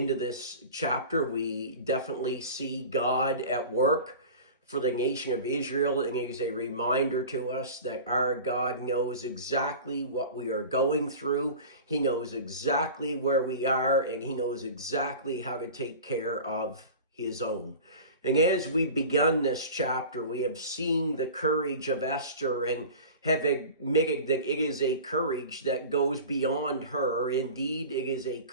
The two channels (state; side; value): inverted; both; correlation -0.37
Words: this chapter, we definitely see God at work for the nation of Israel, and it is a reminder to us that our God knows exactly what we are going through. He knows exactly where we are, and He knows exactly how to take care of His own. And as we've begun this chapter, we have seen the courage of Esther and have admitted that it is a courage that goes beyond her. Indeed, it is a